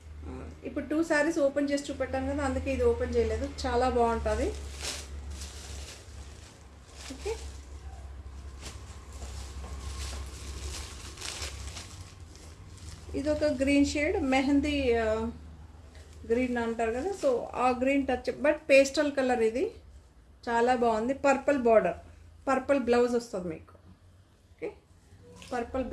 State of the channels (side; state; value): both; identical; correlation 1.00